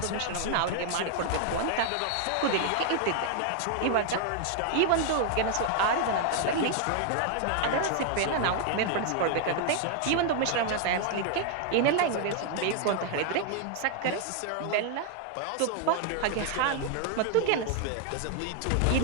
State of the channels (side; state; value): both; different; correlation 0.00